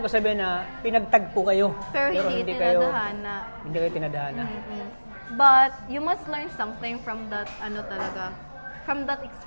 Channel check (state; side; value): inverted; both; correlation -1.00